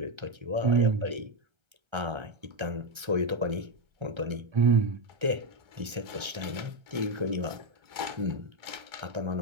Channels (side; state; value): left; late; 1.3 ms